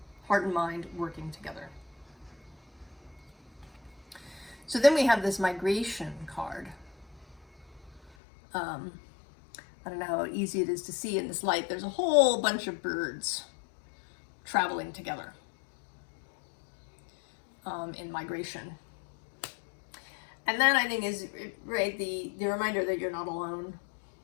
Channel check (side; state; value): right; drops out; at 8.1 s